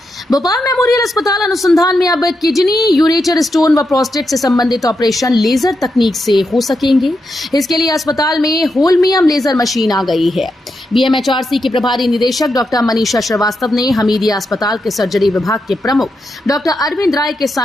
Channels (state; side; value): normal; both; correlation 0.85